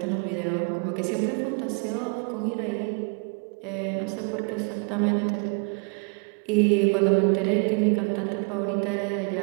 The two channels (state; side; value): quieter; left; 35.4 dB